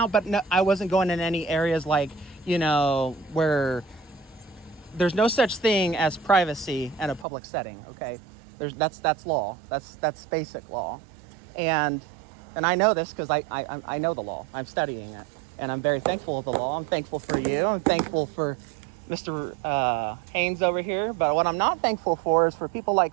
but no, I wasn't going in any areas like, you know, where there's no such thing as privacy in a public setting. Okay, that's law. That's basic law, and I know this because I know the law. I'm studying it, and I'm very thankful of the law. I'm thankful for you. I'm thankful for Mr. Haynes over here. But what I'm not thankful for is for people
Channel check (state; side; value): drops out; left; at 7.2 s